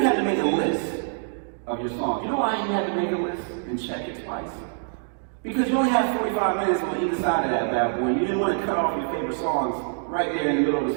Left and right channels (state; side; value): silent; left; digital silence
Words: to make a list of your songs. You know why you had to make a list and check it twice? Because you only had 45 minutes on either side of that bad boy. You didn't want to cut off your favorite songs right there in the middle of